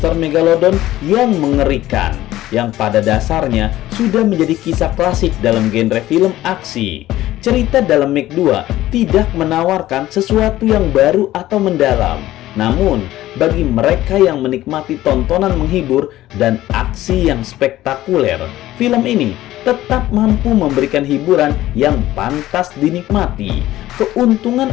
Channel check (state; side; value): quieter; right; 15.0 dB